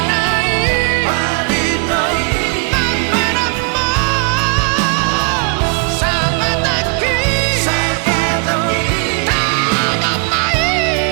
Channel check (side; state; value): left; quieter; 37.4 dB